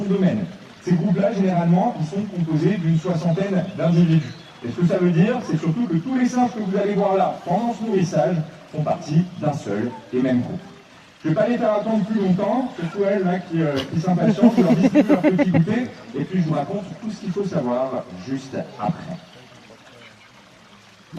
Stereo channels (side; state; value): both; identical; correlation 1.00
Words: domaine. Ces groupes-là, généralement, ils sont composés d'une 60aine d'individus. Et ce que ça veut dire, c'est surtout que tous les singes que vous allez voir là, pendant ce nourrissage, font partie d'un seul et même groupe. Je ne vais pas les faire attendre plus longtemps, surtout elles là, qui s'impatientent, je leur distribue leur petit goûter, et puis je vous raconte tout ce qu'il faut savoir juste après.